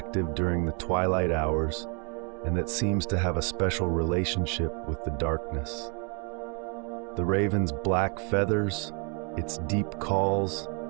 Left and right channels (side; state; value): left; quieter; 36.1 dB